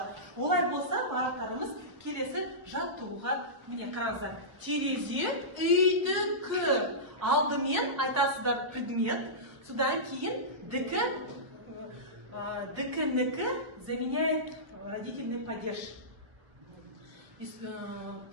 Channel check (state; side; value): late; left; 1.2 ms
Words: Олай болса, бағыттарымыз келесі жаттығуға. Міне қараңыздар. Терезе үйдікі. Алдымен айтасыздар предмет. Содан кейін дікі заменяет родительный падеж.